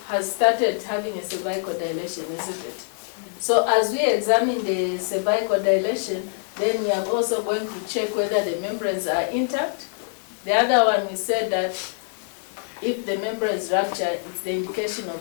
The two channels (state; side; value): silent; right; 62 dB below the other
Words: has started having a cervical dilation, isn't it? So as we examine the cervical dilation, then we are also going to check whether the membranes are intact. The other one, we said that if the membrane is ruptured, it's the indication of